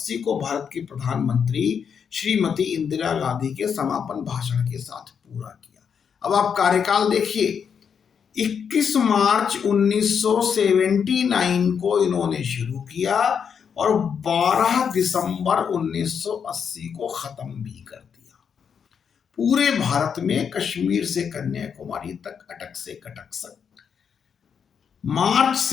को भारत की प्रधानमंत्री श्रीमती इंदिरा गांधी के समापन भाषण के साथ पूरा किया। अब आप कार्यकाल देखिए, 21 मार्च 1979 को इन्होंने शुरू किया और 12 दिसंबर 1980 को खत्म भी कर दिया। पूरे भारत में कश्मीर से कन्याकुमारी तक, अटक से कटक तक, मार्च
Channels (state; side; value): quieter; right; 7.0 dB